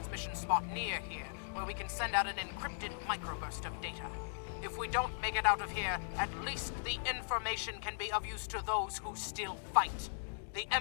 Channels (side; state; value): right; silent; digital silence